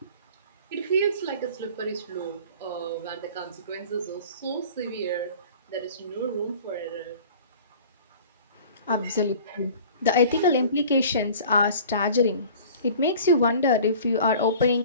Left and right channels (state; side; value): inverted; both; correlation -0.45